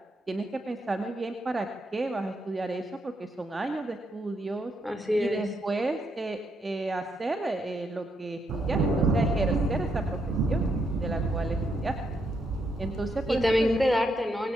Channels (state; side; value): normal; both; correlation 0.78